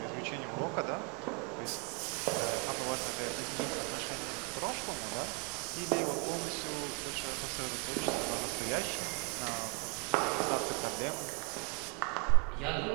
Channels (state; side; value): quieter; left; 33.1 dB